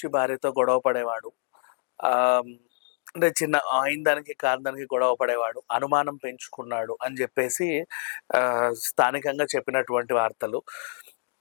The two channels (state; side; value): silent; right; digital silence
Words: భార్యతో గొడవ పడేవాడు. ఆహ్, అంటే చిన్న అయిన దానికి, కాని దానికి గొడవ పడేవాడు. అనుమానం పెంచుకున్నాడు అని జెప్పేసి స్థానికంగా చెప్పినటువంటి వార్తలు.